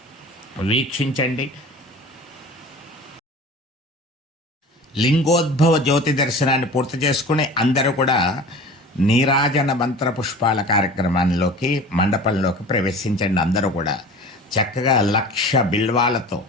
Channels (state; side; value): normal; both; correlation 0.39